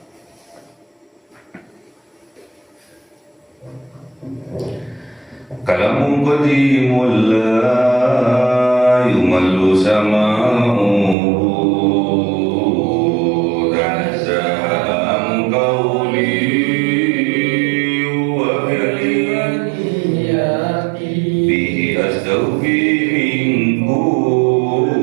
Kalamun qadimun la yumallu sama'uhu tanazzaha an qawli wa kalimati bihi astawfi min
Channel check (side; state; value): left; drops out; at 11.2 s